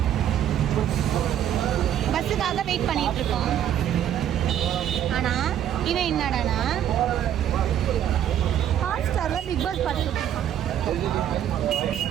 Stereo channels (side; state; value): left; quieter; 10.5 dB